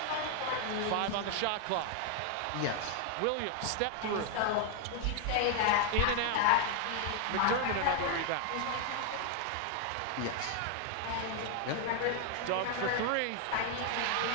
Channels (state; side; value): different; both; correlation 0.00